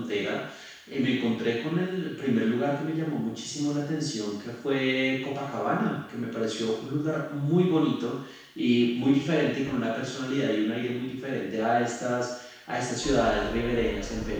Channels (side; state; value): both; identical; correlation 1.00